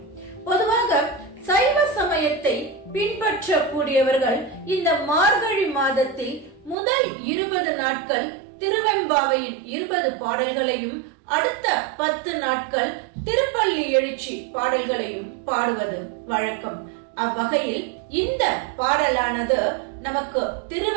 பொதுவாக சைவ சமயத்தை பின்பற்றக்கூடியவர்கள் இந்த மார்கழி மாதத்தில் முதல் 20 நாட்கள் திருவெம்பாவையின் 20 பாடல்களையும் அடுத்த 10 நாட்கள் திருப்பள்ளி எழுச்சி பாடல்களையும் பாடுவது வழக்கம். அவ்வகையில் இந்த பாடலானது நமக்கு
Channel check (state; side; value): drops out; left; at 6.8 s